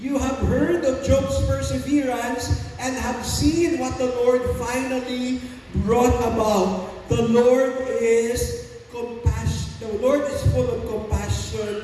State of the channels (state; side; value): identical; both; correlation 1.00